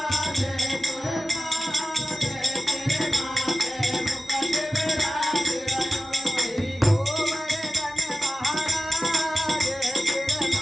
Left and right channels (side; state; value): both; normal; correlation 0.94